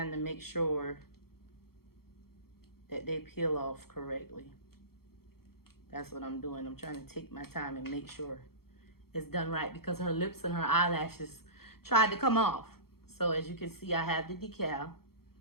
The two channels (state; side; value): late; right; 0.94 ms